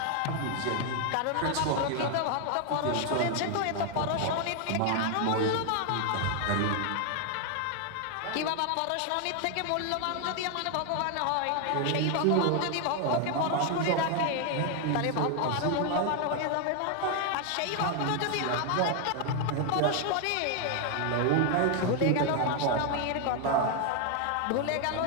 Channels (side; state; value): both; different; correlation 0.01